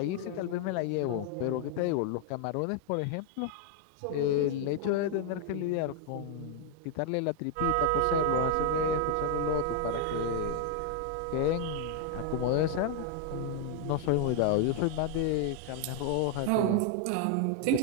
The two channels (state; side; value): different; both; correlation 0.00